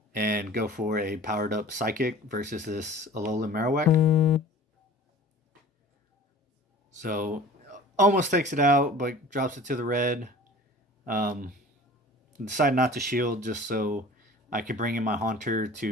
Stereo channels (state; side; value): normal; both; correlation 0.43